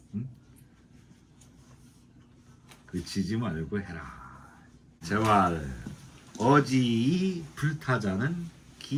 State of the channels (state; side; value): identical; both; correlation 1.00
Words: 응? 그치지 말고 해라. 재활 어지이 불타자는